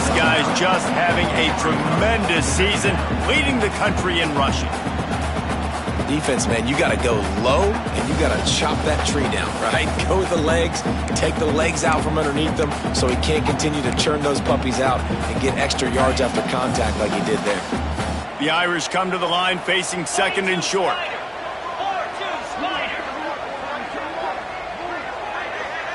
guy's just having a tremendous season, leading the country in rushing. Defense, man, you got to go low, and you got to chop that tree down, right? Go with the legs, take the legs out from underneath them so he can't continue to churn those puppies out and get extra yards after contact like he did there. The Irish come to the line facing second and short.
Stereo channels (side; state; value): both; identical; correlation 1.00